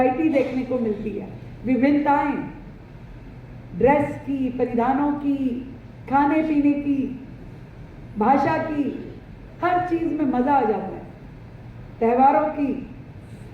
देखने को मिलती है। विभिन्नताएं, ड्रेस की, परिधानों की, खाने पीने की, भाषा की, हर चीज में मजा आ जाता है, त्योहारों की।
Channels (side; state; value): both; identical; correlation 1.00